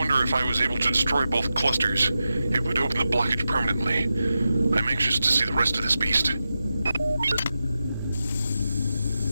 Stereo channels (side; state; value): both; inverted; correlation -0.91